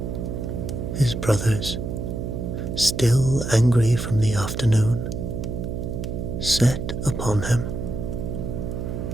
his brothers, still angry from the afternoon, set upon him.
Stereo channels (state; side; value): noise; right; hum, 4 dB below the sound